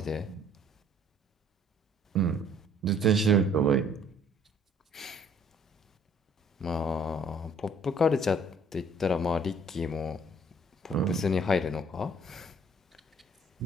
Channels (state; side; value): normal; both; correlation 0.59